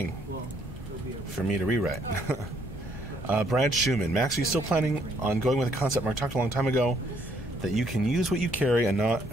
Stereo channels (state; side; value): normal; both; correlation 0.68